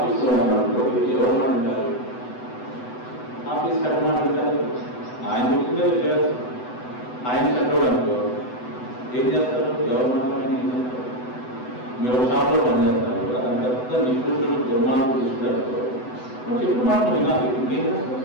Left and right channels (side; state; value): right; late; 8.0 ms